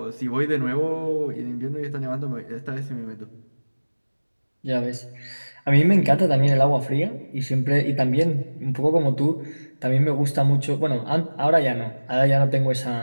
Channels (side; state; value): both; inverted; correlation -1.00